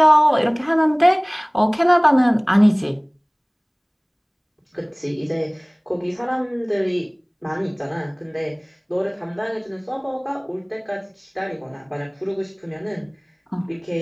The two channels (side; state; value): both; identical; correlation 1.00